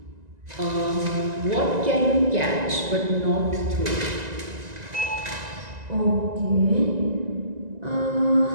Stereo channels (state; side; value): late; left; 1.9 ms